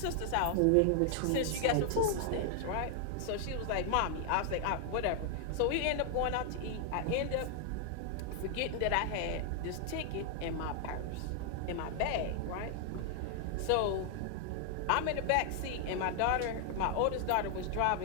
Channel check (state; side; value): different; both; correlation 0.00